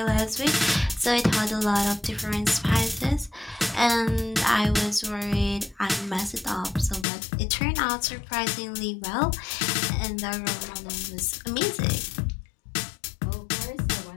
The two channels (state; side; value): drops out; right; at 7.1 s